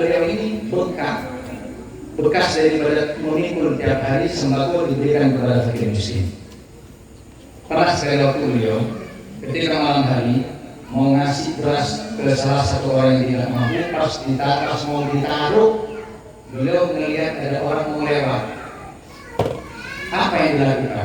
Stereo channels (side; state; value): both; identical; correlation 1.00